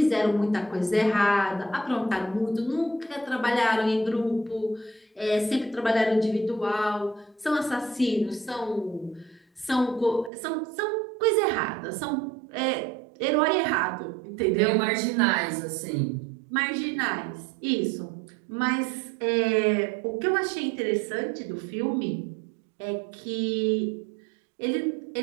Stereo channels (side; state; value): left; drops out; at 10.3 s